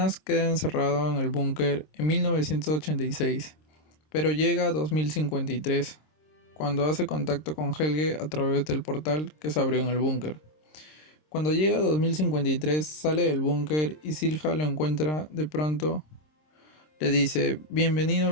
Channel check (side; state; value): right; late; 26 ms